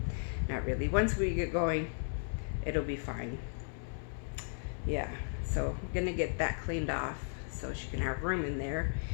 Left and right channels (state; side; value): silent; right; 54 dB below the other